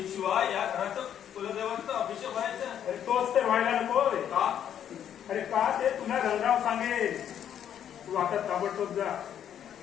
शिवाय या घराचं कुलदेवांचा अभिषेक व्हायचा. अरे तोच तर व्हायला नको. का? अरे का ते तुला रंगराव सांगेल. तू आता ताबडतोब जा.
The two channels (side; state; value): right; quieter; 9.6 dB